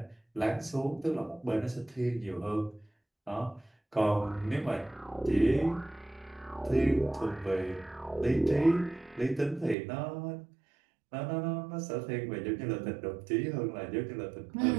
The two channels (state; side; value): drops out; left; at 9.8 s